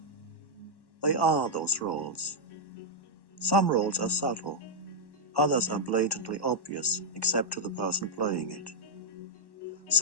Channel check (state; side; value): late; right; 1.1 ms